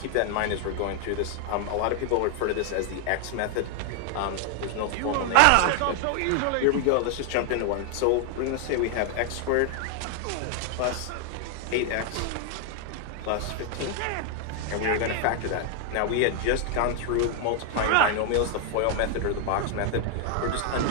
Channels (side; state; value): both; different; correlation 0.00